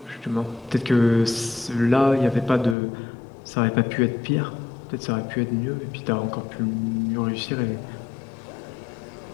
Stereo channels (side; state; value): right; drops out; at 2.8 s